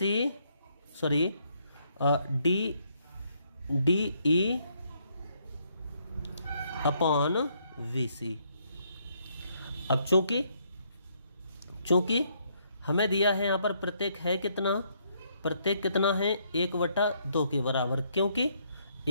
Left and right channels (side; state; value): both; inverted; correlation -0.71